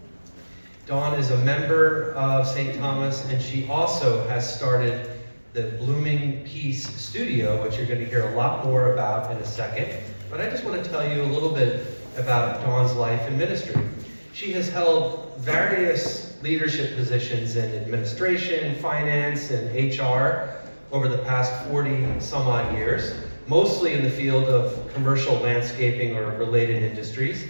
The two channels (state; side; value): inverted; both; correlation -1.00